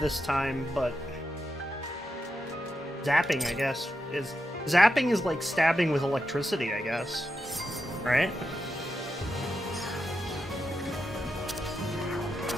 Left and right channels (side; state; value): both; normal; correlation 0.87